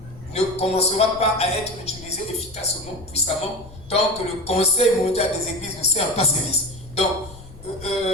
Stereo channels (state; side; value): noise; left; rumble, 18 dB below the sound